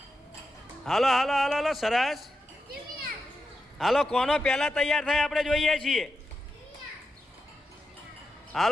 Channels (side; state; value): both; normal; correlation 0.88